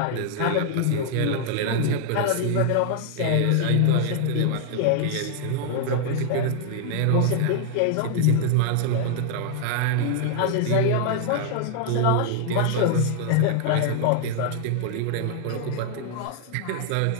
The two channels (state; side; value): different; both; correlation 0.00